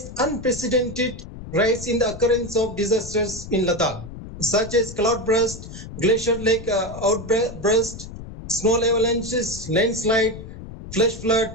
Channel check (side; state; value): left; noise; rumble, 12 dB below the sound